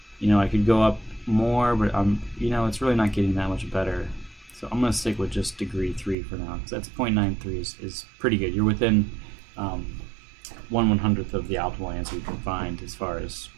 I could go up more, but it's really not getting that much better. So I'm going to stick with just degree 3 for now, because that's 0.93 is pretty good. You're within 1/100th of the optimal answer you can find as far as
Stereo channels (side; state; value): left; drops out; at 6.2 s